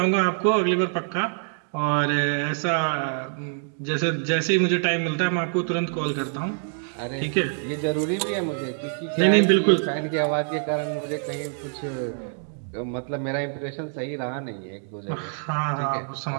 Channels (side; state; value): left; silent; 60 dB below the other